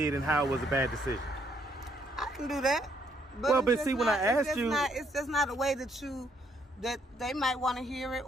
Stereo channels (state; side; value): normal; both; correlation 0.70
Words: and how it was a bad decision. I can do that. But see, when I asked you, it's just not a way that they might want to hear it,